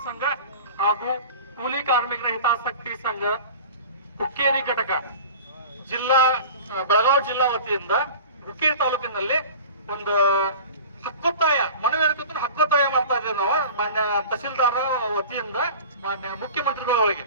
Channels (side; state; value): both; inverted; correlation -0.38